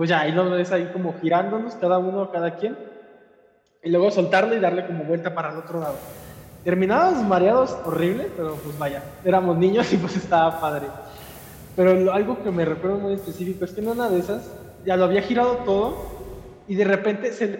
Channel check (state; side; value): identical; both; correlation 1.00